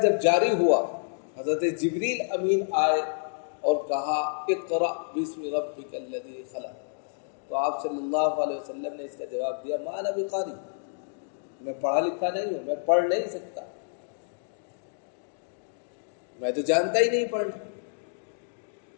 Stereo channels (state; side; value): silent; right; digital silence